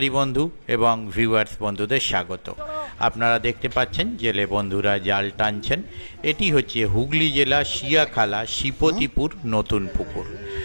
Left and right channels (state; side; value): inverted; both; correlation -1.00